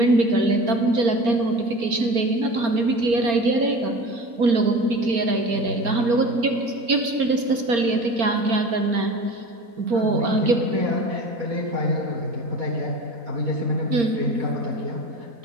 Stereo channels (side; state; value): left; late; 4.3 ms